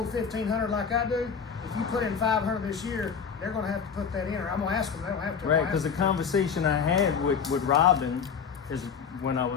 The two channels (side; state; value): right; quieter; 6.6 dB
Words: $1,500 like I do, if you put in $500 this year, they're gonna have to put that in, or I'm gonna ask them, they don't have to. I'm Right, gonna because the ask them. conversation I had with Robin is when I